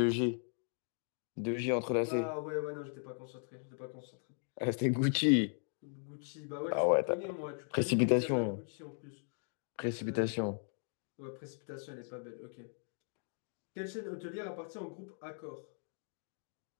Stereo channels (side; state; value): right; silent; 53 dB below the other